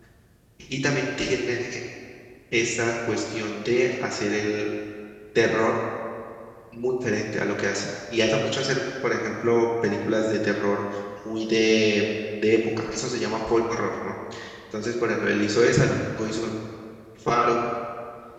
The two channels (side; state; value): both; identical; correlation 1.00